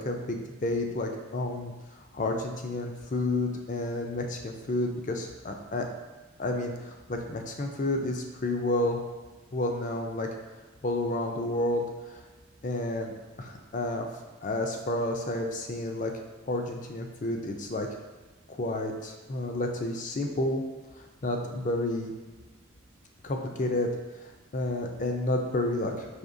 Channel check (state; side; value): normal; both; correlation 0.30